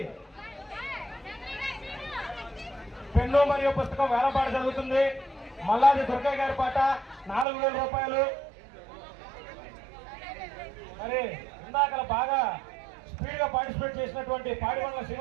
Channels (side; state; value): left; drops out; at 7.5 s